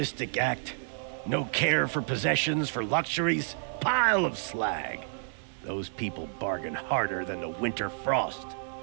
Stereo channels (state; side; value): silent; left; digital silence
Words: act. No care for possessions, for luxuries. Pile of slag. Those people bargain harder than the winter frost.